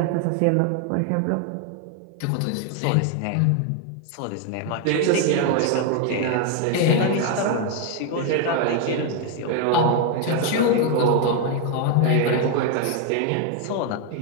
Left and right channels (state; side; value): different; both; correlation 0.01